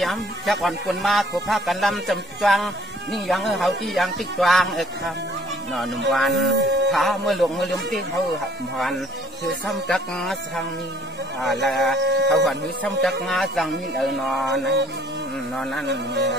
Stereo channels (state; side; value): normal; both; correlation 0.57